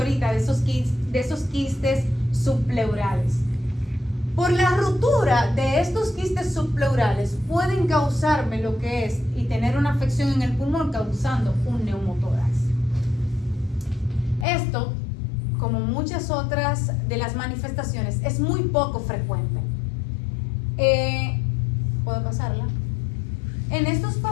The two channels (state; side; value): drops out; right; at 14.5 s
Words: de esos quistes subpleurales. Por la ruptura de estos quistes subpleurales pueden causarme lo que es y tener una afección en el pulmón causando un neumotórax. Esto, como muchas otras de las manifestaciones, es muy poco frecuente. ¿Puedo pasarla? En estos